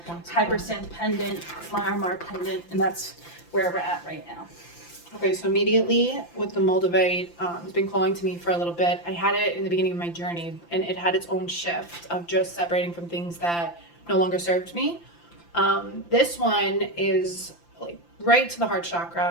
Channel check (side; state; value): right; late; 5.8 ms